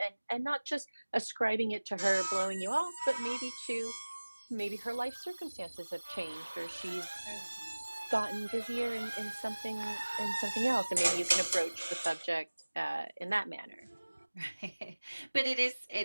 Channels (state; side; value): inverted; both; correlation -1.00